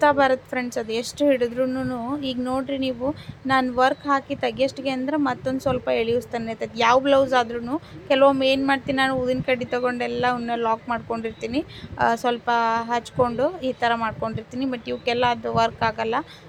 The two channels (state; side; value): identical; both; correlation 1.00